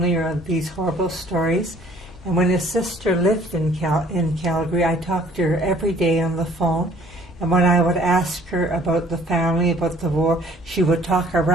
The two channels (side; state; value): both; normal; correlation 0.56